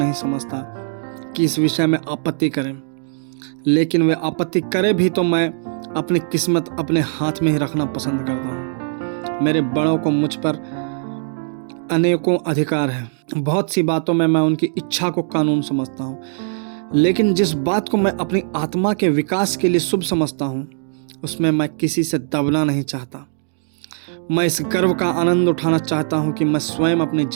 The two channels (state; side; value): silent; left; digital silence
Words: समझता कि इस विषय में आपत्ति करें, लेकिन वे आपत्ति करे भी तो मैं अपनी किस्मत अपने हाथ में ही रखना पसंद करता हूँ। मेरे बड़ों को मुझ पर अनेकों अधिकार है। बहुत सी बातों में मैं उनकी इच्छा को कानून समझता हूँ, लेकिन जिस बात को मैं अपनी आत्मा के विकास के लिए शुभ समझता हूँ उसमें मैं किसी से दबना नहीं चाहता। मैं इस गर्व का आनंद उठाना चाहता हूँ कि मैं स्वयं अपने